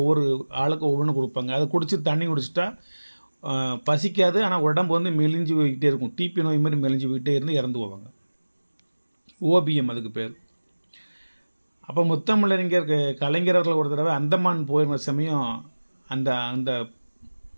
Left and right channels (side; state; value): both; inverted; correlation -1.00